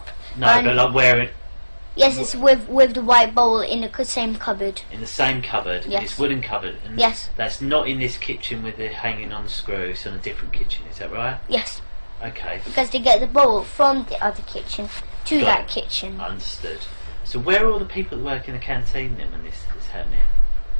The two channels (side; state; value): both; inverted; correlation -1.00